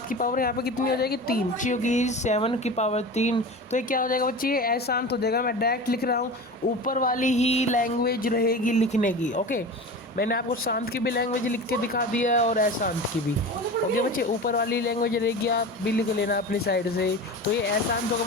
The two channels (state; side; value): normal; both; correlation 0.32